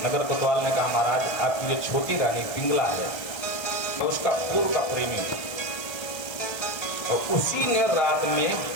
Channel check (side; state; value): right; late; 1.3 ms